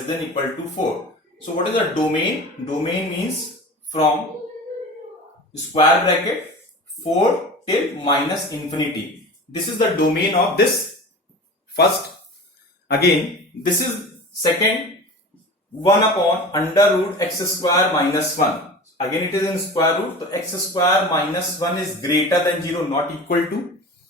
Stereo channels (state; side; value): normal; both; correlation 0.35